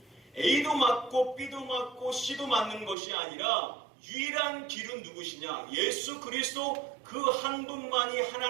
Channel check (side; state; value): left; drops out; at 3.0 s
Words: A도 맞고 B도 맞고 C도 맞는 것이 아니라 유일한 길은 누구시냐? 예수 그리스도 그 한 분만이